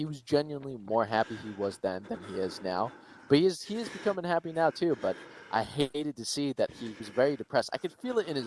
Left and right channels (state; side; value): identical; both; correlation 1.00